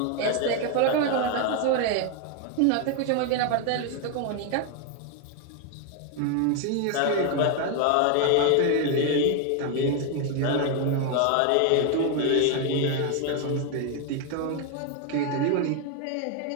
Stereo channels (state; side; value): different; both; correlation 0.00